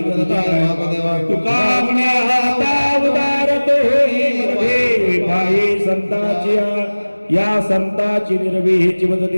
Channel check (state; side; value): inverted; both; correlation -1.00